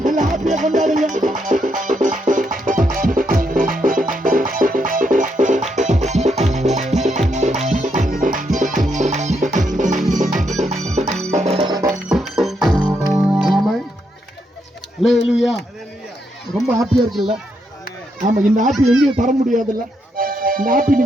எல்லாம் ஹாப்பியா கொண்டாடுங்க. ரொம்ப ஹாப்பியா இருக்குல்ல? ஆமா, இந்த ஹாப்பி எங்கேயும் தர முடியாதுல்ல. இந்த ஹாப்பி நீ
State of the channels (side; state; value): both; normal; correlation 0.79